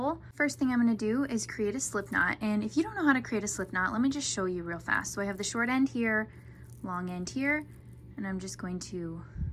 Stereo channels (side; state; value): both; identical; correlation 1.00